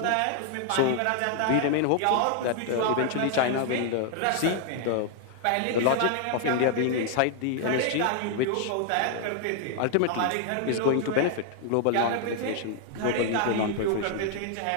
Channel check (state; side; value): different; both; correlation 0.00